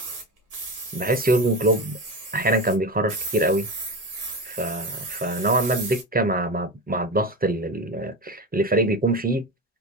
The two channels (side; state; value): both; normal; correlation 0.23